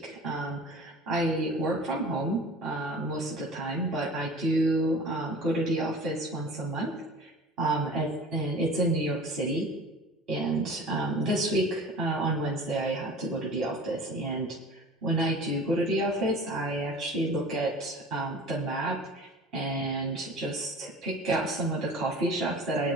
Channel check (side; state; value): both; normal; correlation 0.40